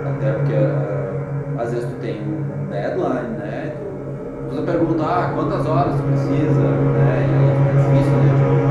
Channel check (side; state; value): both; identical; correlation 1.00